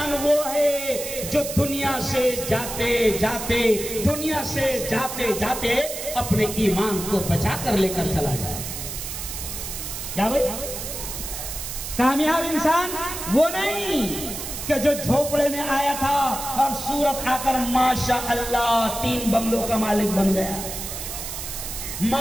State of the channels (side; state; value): right; noise; hiss, 7 dB below the sound